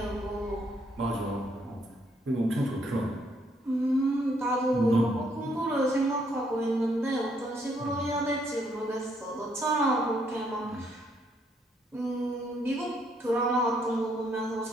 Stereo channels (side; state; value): both; normal; correlation 0.71